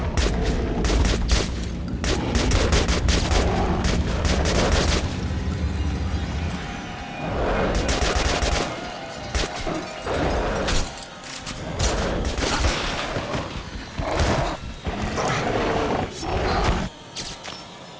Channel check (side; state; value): both; identical; correlation 1.00